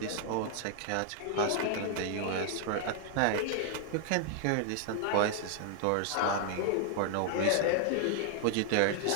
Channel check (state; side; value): different; both; correlation 0.00